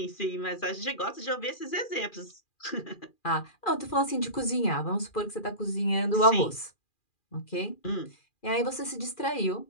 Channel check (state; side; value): late; right; 2.4 ms